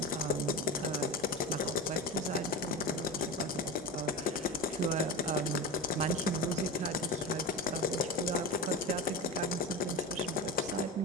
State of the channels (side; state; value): both; normal; correlation 0.25